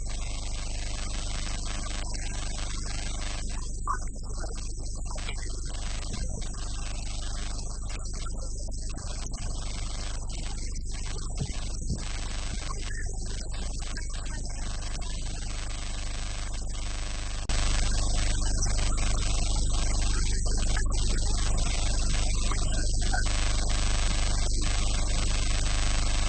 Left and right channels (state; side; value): identical; both; correlation 1.00